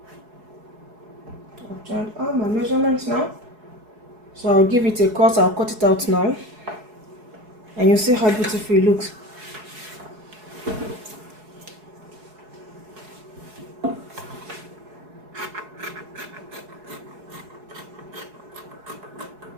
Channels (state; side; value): late; left; 4.7 ms